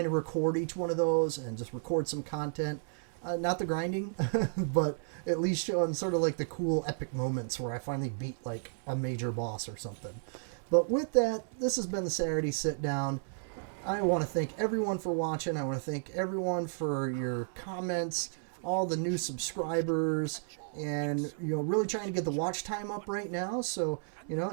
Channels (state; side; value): silent; left; 56 dB below the other